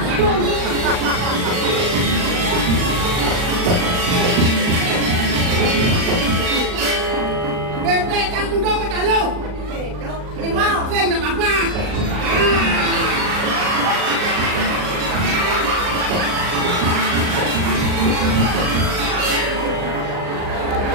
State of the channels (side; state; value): left; late; 39 ms